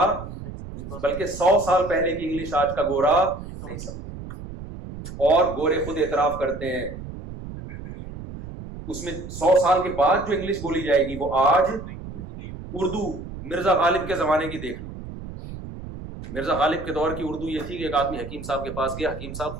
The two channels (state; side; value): noise; right; rumble, 11 dB below the sound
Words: بلکہ 100 سال پہلے کی انگلش آج کا گورا نہیں سمجھے. اور گورے خود اعتراف کرتے ہیں اس میں 100 سال کے بعد جو انگلش بولی جائے گی وہ آج. اردو مرزا غالب کے زمانے کی دیکھ لو. مرزا غالب کے دور کی اردو یہ تھی کہ ایک آدمی حکیم صاحب کے پاس گیا، حکیم صاحب